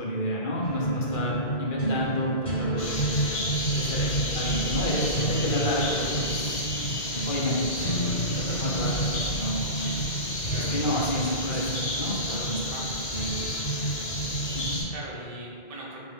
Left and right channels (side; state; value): right; late; 2.1 ms